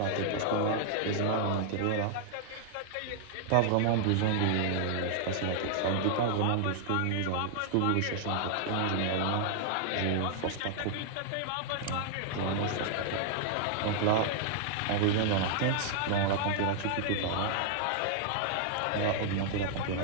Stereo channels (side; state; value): both; different; correlation 0.00